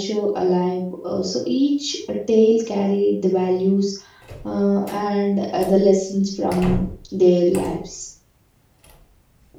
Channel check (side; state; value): both; identical; correlation 1.00